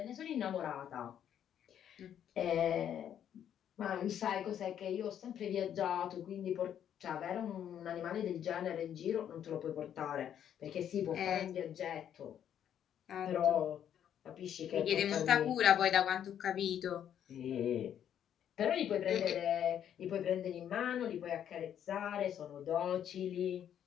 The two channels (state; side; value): quieter; right; 9.7 dB